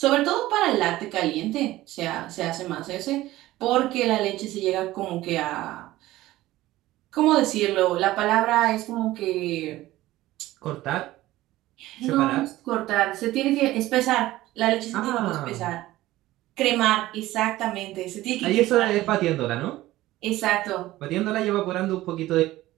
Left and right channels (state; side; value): quieter; left; 16.4 dB